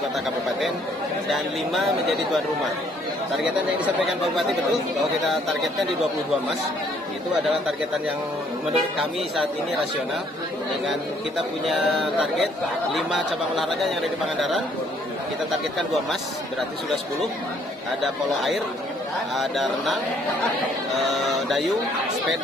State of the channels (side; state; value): both; normal; correlation 0.64